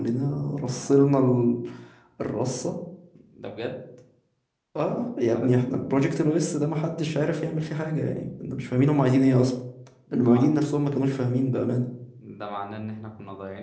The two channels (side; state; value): both; identical; correlation 1.00